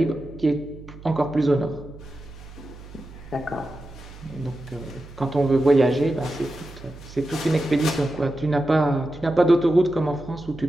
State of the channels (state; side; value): noise; right; hum, 17 dB below the sound